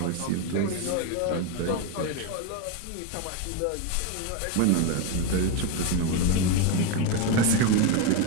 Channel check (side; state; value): both; different; correlation 0.03